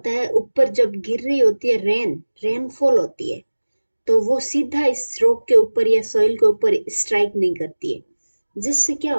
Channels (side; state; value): both; inverted; correlation -1.00